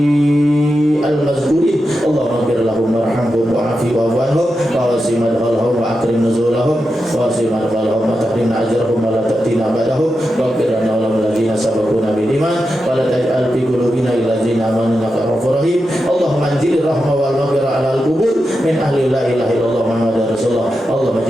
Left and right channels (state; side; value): normal; both; correlation 0.89